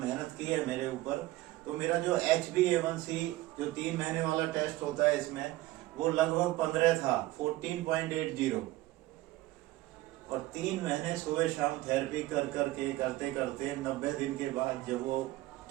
की है मेरे ऊपर। तो मेरा जो HbA1c जो 3 महीने वाला टेस्ट होता है इसमें, वो लगभग 15 था, 14.80। और 3 महीने सुबह शाम थेरेपी करते करते 90 दिन के बाद जब वो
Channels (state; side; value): quieter; left; 17.7 dB